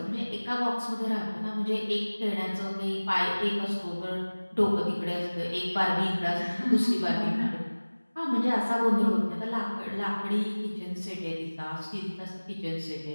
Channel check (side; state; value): both; inverted; correlation -1.00